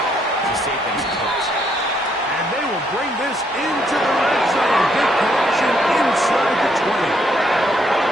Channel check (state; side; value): normal; both; correlation 0.72